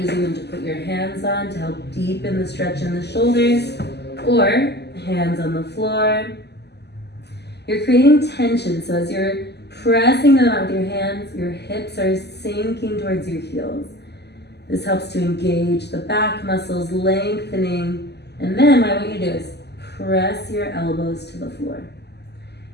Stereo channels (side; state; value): right; late; 0.49 ms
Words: them to put your hands on to help deepen the stretch in the shoulders, or hands on the floor. You're creating tension, so as you're pressing them out with your hands, your hips are sinking towards your heels. This helps to engage the back muscles, lengthening, and then what I want you to do is press your elbows to the floor.